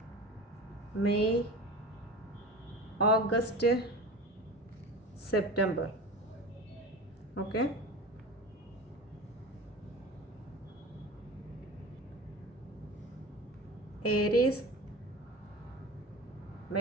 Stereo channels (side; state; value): both; normal; correlation 0.34